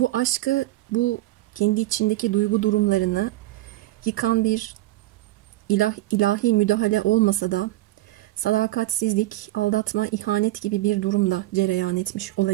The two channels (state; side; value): quieter; left; 17.3 dB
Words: aşkı, bu kendi içindeki duygu durumlarını yıkan bir ilahi müdahale olmasa da sadakatsizlik, aldatma, ihanet gibi bir durumda cereyan etmiş